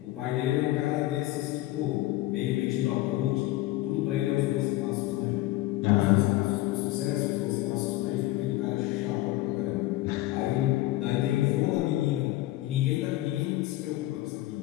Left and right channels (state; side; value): quieter; right; 16.7 dB